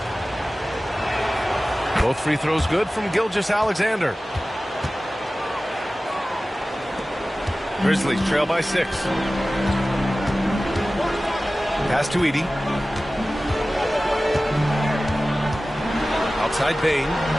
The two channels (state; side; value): normal; both; correlation 0.97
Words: Both free throws good from Gilgeous-Alexander. Grizzlies trail by 6. Pass to Edey. Outside Bain.